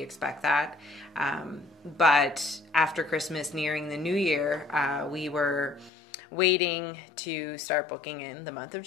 expect that. But after Christmas, nearing the new year, we were waiting to start booking in the month of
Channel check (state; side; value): drops out; right; at 5.9 s